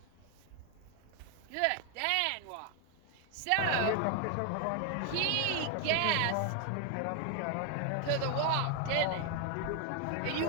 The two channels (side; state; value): both; different; correlation 0.00